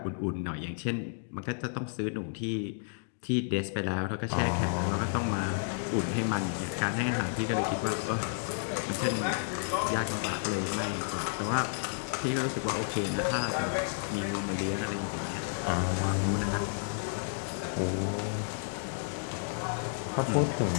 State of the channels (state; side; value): silent; right; digital silence